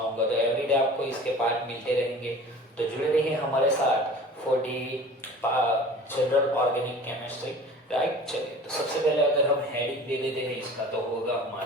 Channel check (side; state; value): both; normal; correlation 0.42